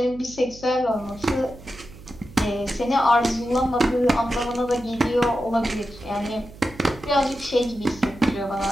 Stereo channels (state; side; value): noise; right; hum, 18 dB below the sound